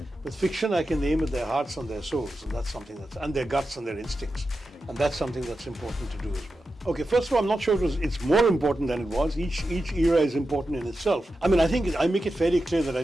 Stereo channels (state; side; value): normal; both; correlation 0.91